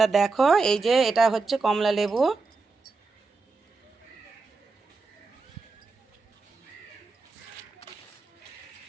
দেখো এই যে এটা হচ্ছে কমলা লেবু।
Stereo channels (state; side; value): quieter; left; 4.1 dB